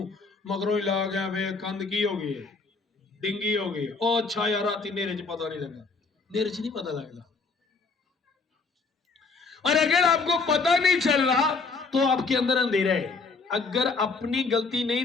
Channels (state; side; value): quieter; right; 4.3 dB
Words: मगरों ही ला गया वे, कंध की हो गई, डिंगी हो गई। ओ अच्छा यार राती नेरे च पता नहीं लगा। नेरे च नहीं पता लगता। और अगर आपको पता नहीं चल रहा तो आपके अंदर अंधेरा है। अगर अपनी गलती नहीं